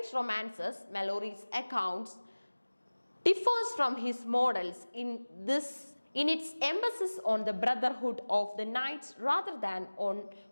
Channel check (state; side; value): inverted; both; correlation -1.00